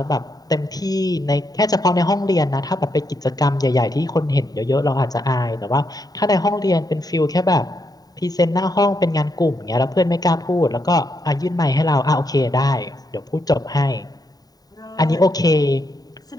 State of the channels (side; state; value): right; late; 0.18 ms